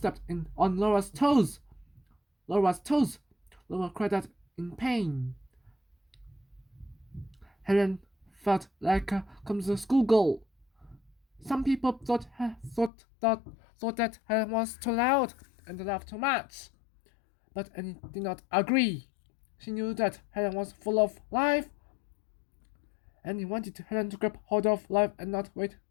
on Laura's toes. Laura's toes. Laura cried out in pain. Helen felt like a clumsy schoolgirl. Some people thought that Helen was too loud and laughed too much, but Annie did not agree. She knew that Helen was full of life, and he wanted Helen to grab hold of life and not wait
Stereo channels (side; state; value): right; drops out; at 12.9 s